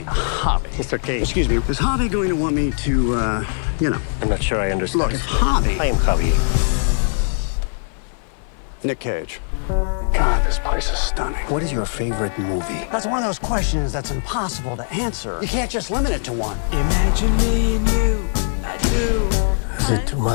Mr. Cage. Excuse me, is Javi going to want me to, you know? I'm not sure I understand. Look, it's Javi. I am Javi. Nick Cage. God, this place is stunning. What is your favorite movie? That's one of those questions that's impossible to answer. You can't just limit it to one. Imagine me and you, I do. Is it too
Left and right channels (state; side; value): silent; right; 56 dB below the other